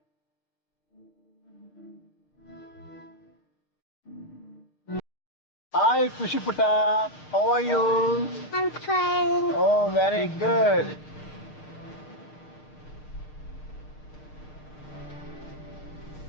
Hi, Kushi Putta. How are you? I'm fine. Oh, very good.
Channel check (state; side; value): late; right; 6.5 ms